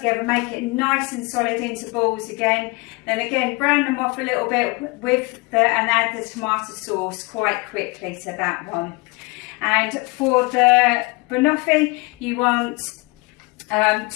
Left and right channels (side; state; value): right; quieter; 26.8 dB